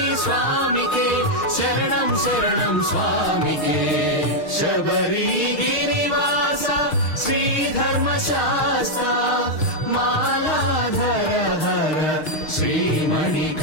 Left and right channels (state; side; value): late; right; 6.4 ms